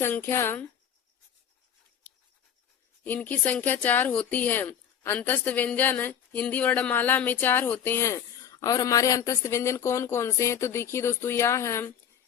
4 होती है। अंतस्थ व्यंजन हिंदी वर्णमाला में 4 होते हैं। और हमारे अंतस्थ व्यंजन कौन कौन से हैं? तो देखिए दोस्तों, या है,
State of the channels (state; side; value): quieter; right; 8.9 dB